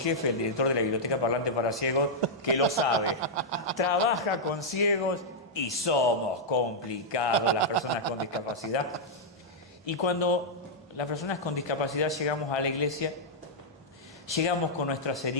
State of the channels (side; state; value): both; normal; correlation -0.06